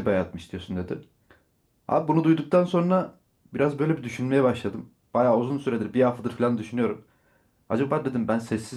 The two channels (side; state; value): both; identical; correlation 1.00